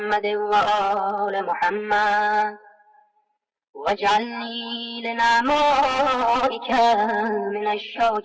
وآل محمد، واجعلني لنعمائك من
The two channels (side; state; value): both; identical; correlation 1.00